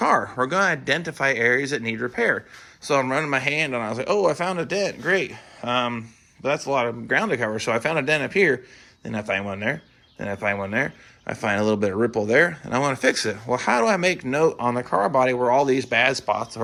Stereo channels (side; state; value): both; identical; correlation 1.00